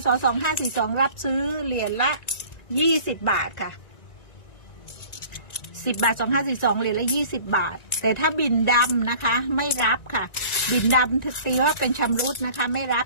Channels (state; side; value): late; right; 1.9 ms